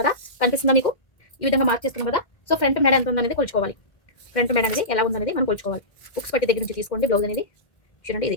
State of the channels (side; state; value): right; late; 2.1 ms